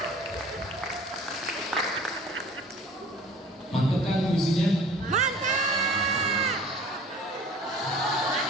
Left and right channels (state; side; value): normal; both; correlation 0.48